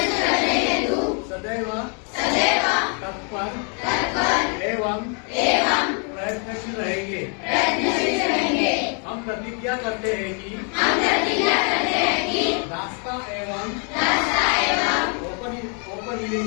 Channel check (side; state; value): right; quieter; 39.2 dB